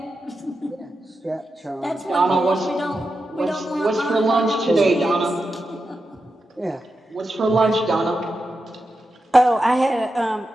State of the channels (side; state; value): both; normal; correlation 0.89